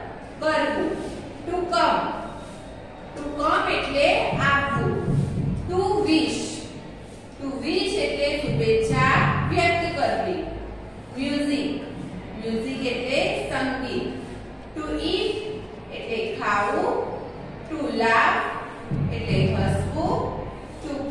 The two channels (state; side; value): identical; both; correlation 1.00